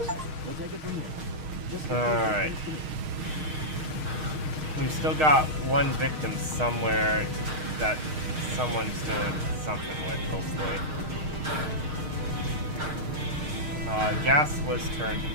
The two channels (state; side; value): late; left; 6.5 ms